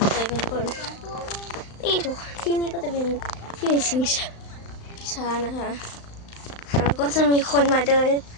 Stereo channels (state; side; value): late; right; 35 ms